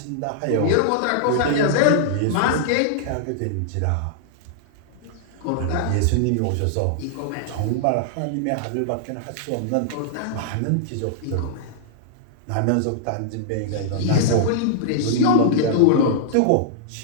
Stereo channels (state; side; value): different; both; correlation -0.01